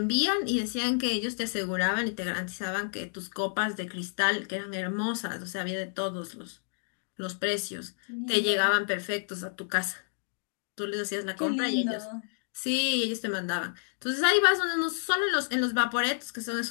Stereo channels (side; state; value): right; silent; digital silence